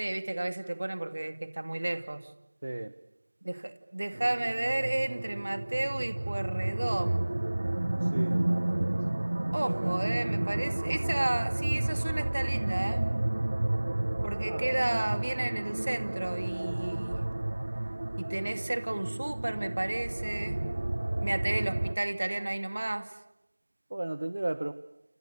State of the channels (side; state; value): both; inverted; correlation -1.00